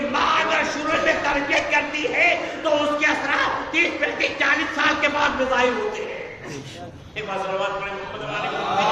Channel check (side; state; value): both; identical; correlation 1.00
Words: ماں اگر شروع میں تربیت کرتی ہے تو اس کے اثرات 30 35 40 سال کے بعد میں ظاہر ہوتے ہیں۔ ایک بات سلوات پڑھیں محمد